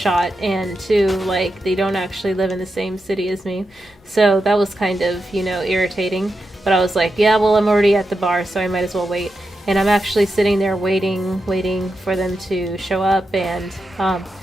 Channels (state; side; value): normal; both; correlation 0.88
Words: and two, like, they don't actually live in the same city as me. So that was kind of, irritating. But I was like, yeah, well, I'm already at the bar, so I might as well wait. And I'm actually sitting there waiting for them to show up, and